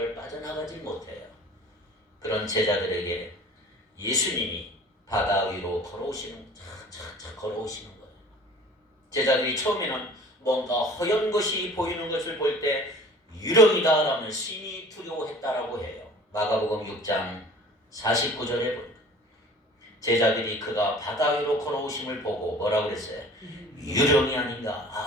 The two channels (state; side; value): normal; both; correlation 0.46